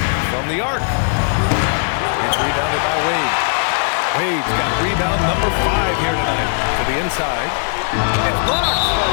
From the arc. It's rebounded by Wade. Wade's got rebound number 5 here tonight. To the inside. It's blocked.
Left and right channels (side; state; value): right; silent; 67 dB below the other